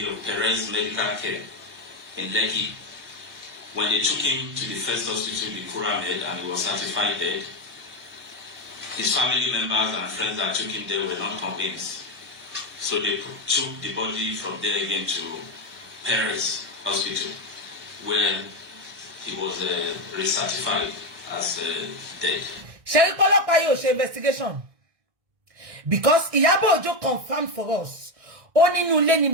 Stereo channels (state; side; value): late; left; 1.6 ms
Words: of Perez Medical Care in Lekki. When they took him to the first hospital, the Kuramed, and he was certified dead, his family members and friends that took him there were not convinced. So they took the body from there again to Perez Hospital, where he was recertified as dead. Sherry Polopa yo she investigation. Because Iyabo Ojo confirmed for us. Oni nu le ni